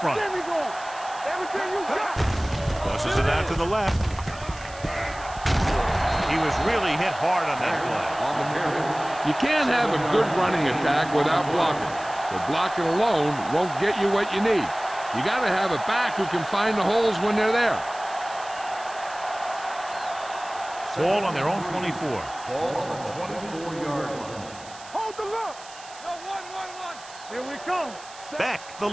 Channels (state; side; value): noise; right; hiss, 18 dB below the sound